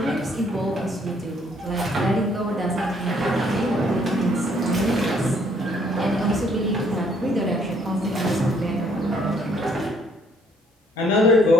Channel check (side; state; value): both; normal; correlation 0.65